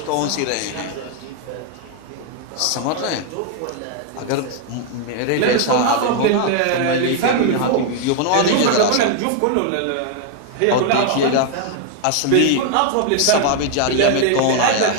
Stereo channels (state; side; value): different; both; correlation 0.00